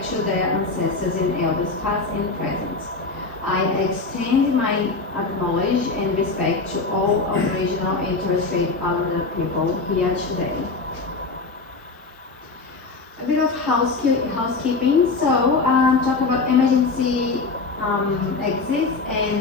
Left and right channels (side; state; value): right; quieter; 3.9 dB